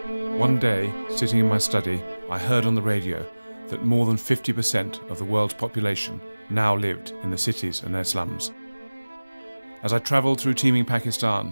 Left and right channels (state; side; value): inverted; both; correlation -1.00